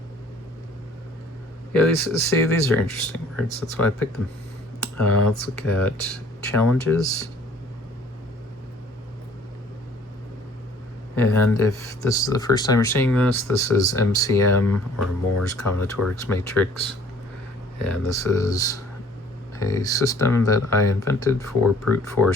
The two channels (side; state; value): both; normal; correlation 0.55